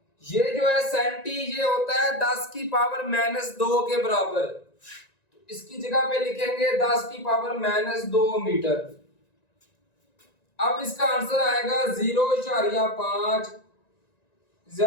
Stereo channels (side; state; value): right; late; 1.9 ms